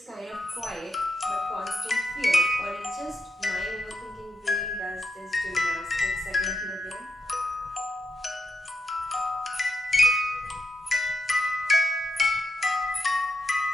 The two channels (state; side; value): normal; both; correlation 0.83